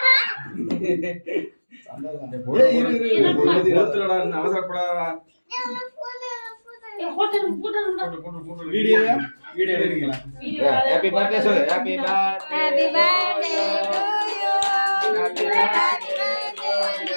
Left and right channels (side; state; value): both; inverted; correlation -1.00